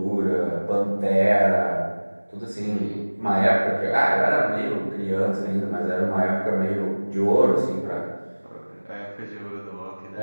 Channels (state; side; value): inverted; both; correlation -1.00